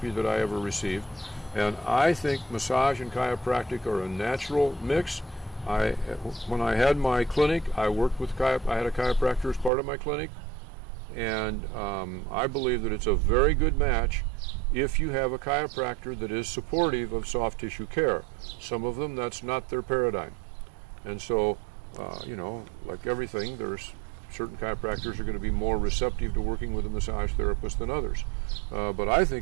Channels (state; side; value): drops out; left; at 9.7 s